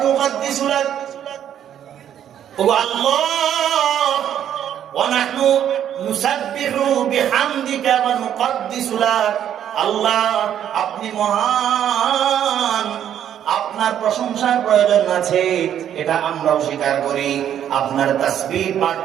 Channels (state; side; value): quieter; left; 10.1 dB